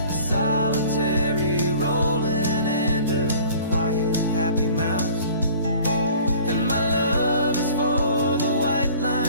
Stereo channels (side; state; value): both; inverted; correlation -0.48